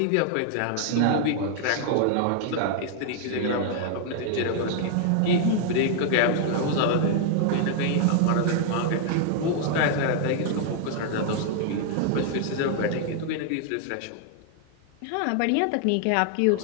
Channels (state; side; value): different; both; correlation 0.00